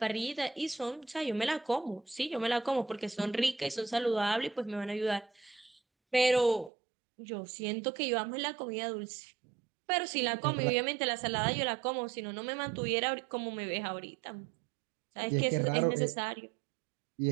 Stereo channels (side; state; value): left; drops out; at 6.7 s